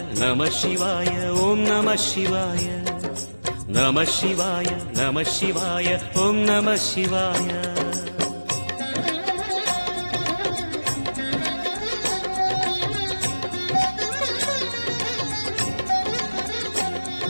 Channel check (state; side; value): inverted; both; correlation -1.00